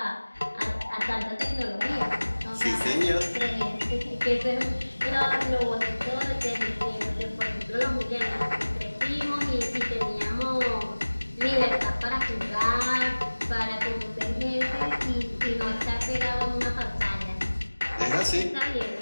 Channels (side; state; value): both; inverted; correlation -1.00